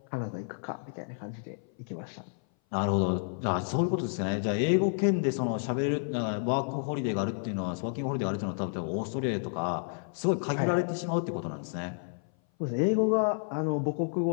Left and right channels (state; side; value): silent; right; 57 dB below the other